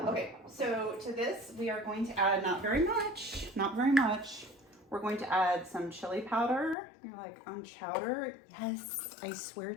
Okay, so to this we are going to add not very much. We're going to add some chili powder. You're like, on chowder? Yes, I swear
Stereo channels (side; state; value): right; drops out; at 6.8 s